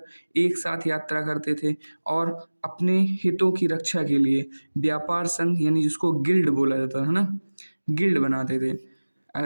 एक साथ यात्रा करते थे, और अपने हितों की रक्षा के लिए व्यापार संघ यानी जिसको गिल्ड बोला जाता है ना, गिल्ड बनाते थे।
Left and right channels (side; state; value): both; inverted; correlation -1.00